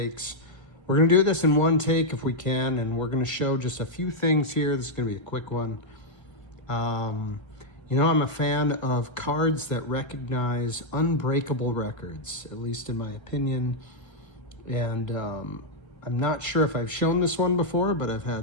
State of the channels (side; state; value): right; late; 1.3 ms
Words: We're going to do this in one take if we can, and we're going to show just a few things here. This is going to be a quick one. I'm a fan of cards that recognize unbreakable records, at least in my opinion. And I'm not sure if I've shown this one before, but I've